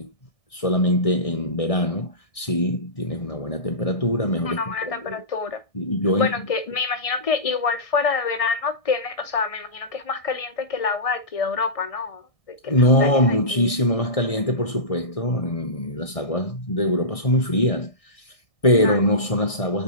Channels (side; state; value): right; late; 1.6 ms